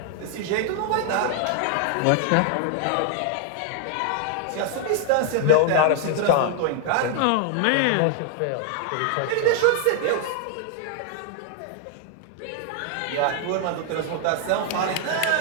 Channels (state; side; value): different; both; correlation 0.00